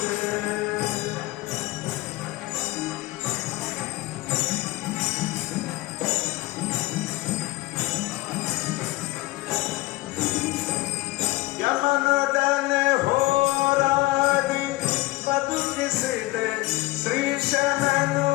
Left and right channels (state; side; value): quieter; right; 20.3 dB